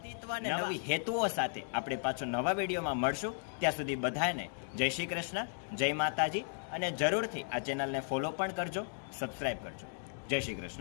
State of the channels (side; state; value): right; silent; digital silence